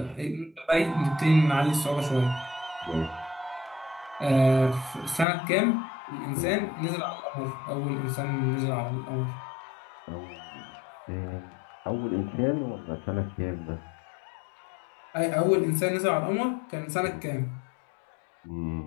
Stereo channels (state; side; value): drops out; right; at 5.2 s